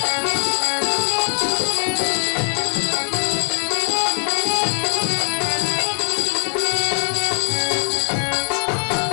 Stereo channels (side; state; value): right; silent; 60 dB below the other